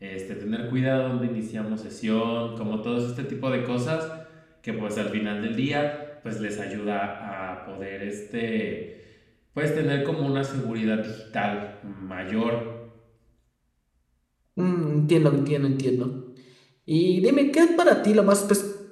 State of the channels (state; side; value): identical; both; correlation 1.00